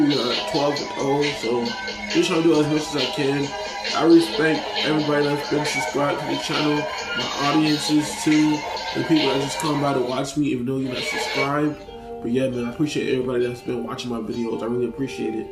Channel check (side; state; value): both; identical; correlation 1.00